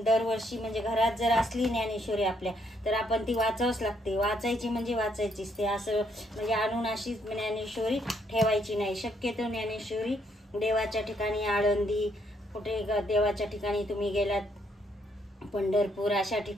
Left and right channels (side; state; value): both; normal; correlation 0.72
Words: दरवर्षी म्हणजे घरात जर असली ज्ञानेश्वरी आपल्या तर आपण ती वाचावंच लागते। वाचायची म्हणजे वाचायचीच, ते असं म्हणजे आणून अशीच ज्ञानेश्वरी ठेवायची नाही। शक्यतो ज्ञानेश्वरी देवाच्या ठिकाणी, आळंदी कुठे देवाच्या ठिकाणी तुम्ही गेलात, पंढरपूर अशा